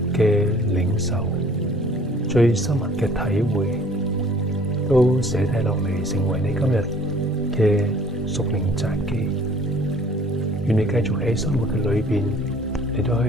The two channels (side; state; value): both; normal; correlation 0.54